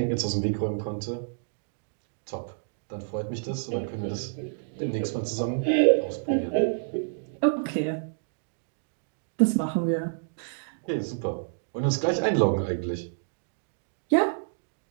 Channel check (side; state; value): left; silent; digital silence